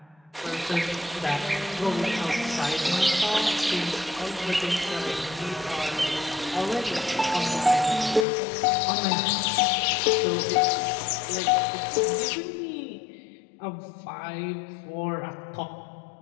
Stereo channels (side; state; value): right; drops out; at 8.2 s